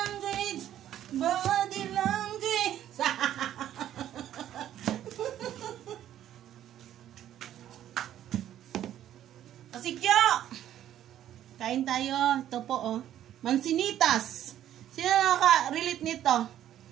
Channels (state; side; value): quieter; left; 11.5 dB